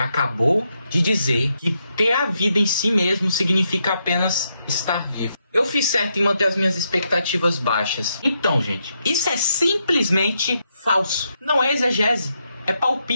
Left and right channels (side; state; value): both; inverted; correlation -0.81